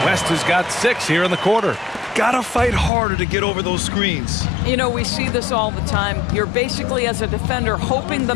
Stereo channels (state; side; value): drops out; right; at 2.9 s